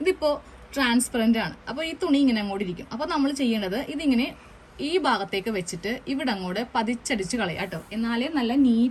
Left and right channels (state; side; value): identical; both; correlation 1.00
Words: ഇതിപ്പോ ട്രാൻസ്പെറന്റ് ആണ്. അപ്പൊ ഈ തുണി ഇങ്ങനെ അങ്ങോട്ട് ഇരിക്കും. അപ്പൊ നമ്മൾ ചെയ്യേണ്ടത് ഇതിങ്ങനെ ഈ ഭാഗത്തേക്ക് വെച്ചിട്ട് ഇവിടെ അങ്ങോട്ട് പതിച്ചടിച്ച് കളയാം കേട്ടോ. എന്നാലേ നല്ല